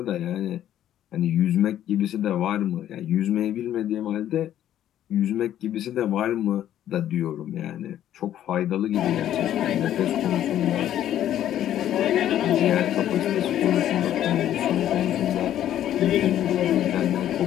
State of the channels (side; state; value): right; quieter; 11.5 dB